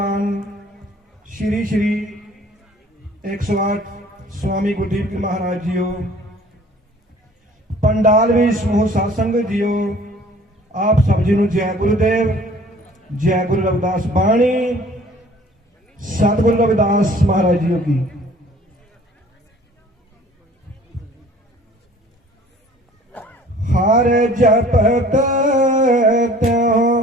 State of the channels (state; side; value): normal; both; correlation 0.52